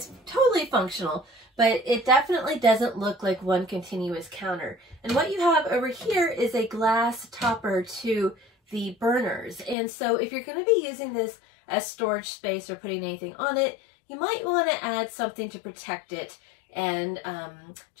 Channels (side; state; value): right; drops out; at 9.8 s